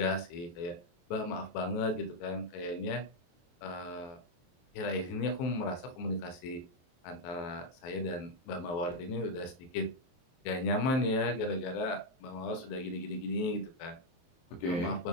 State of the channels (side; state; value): right; late; 23 ms